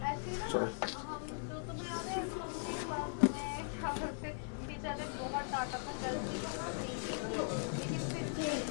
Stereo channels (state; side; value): silent; right; 52 dB below the other